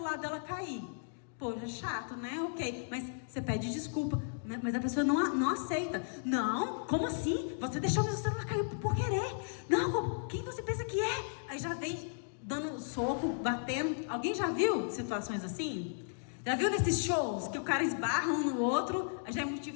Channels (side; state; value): right; silent; digital silence